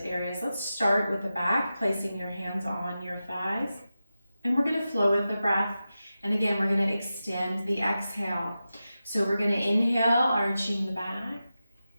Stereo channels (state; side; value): inverted; both; correlation -0.92